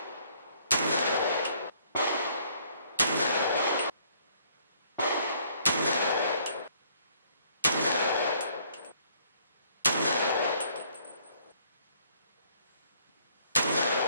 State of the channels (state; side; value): inverted; both; correlation -0.63